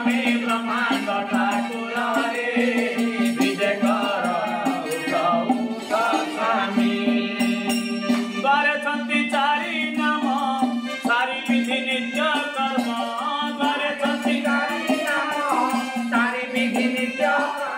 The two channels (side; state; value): both; identical; correlation 1.00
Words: ब्रह्मांड ठाकुर रे विजय कर उठा स्वामी द्वारे छंती चारि नाम सारी विधि नित्य कर्म द्वारे छंती चारि नाम सारी विधि नित्य